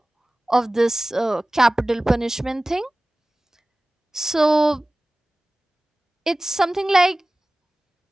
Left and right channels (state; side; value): normal; both; correlation 0.97